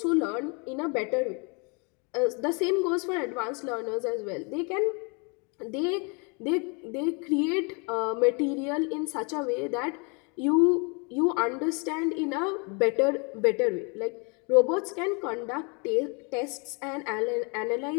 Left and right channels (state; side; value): quieter; right; 33.2 dB